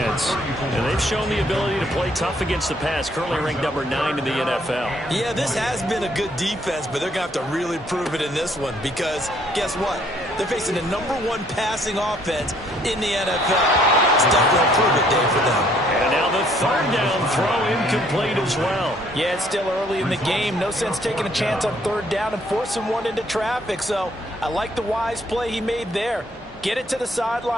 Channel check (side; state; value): both; normal; correlation 0.65